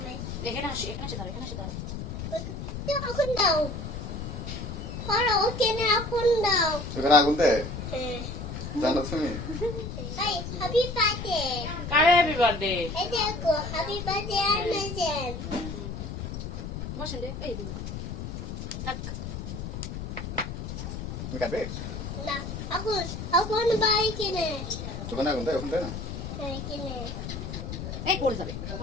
এখানে আসে দাঁড়া এখন দাও পড়ো ওকে না এখন দাও এখানে আগুন দে হ্যাঁ জানো তুমি এই হ্যাপি বার্থডে কার হ্যাপি বার্থডে এই দেখো হ্যাপি বার্থডে আনছেন বসেন রে এই দিন থাক তুমি কাটবে না এখন বাই কিনে ওখানে আগুন দে ওখানে দে না হ্যাঁ কিনে এই পড়ে যাবে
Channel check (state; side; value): noise; left; rumble, 6 dB below the sound